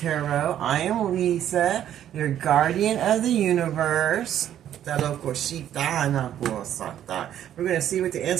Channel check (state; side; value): quieter; left; 10.9 dB